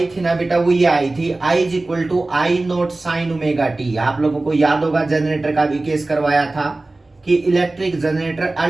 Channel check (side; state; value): left; quieter; 3.0 dB